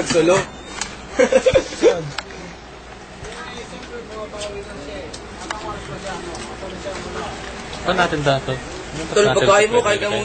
Saan natin dato? Tol, pagkain mo, kain ka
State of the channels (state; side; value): identical; both; correlation 1.00